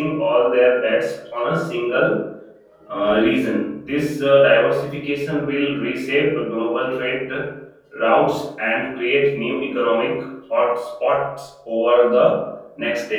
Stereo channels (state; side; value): identical; both; correlation 1.00